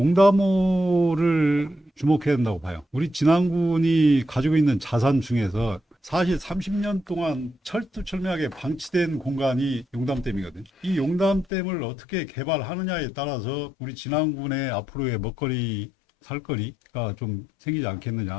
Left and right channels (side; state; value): right; drops out; at 11.5 s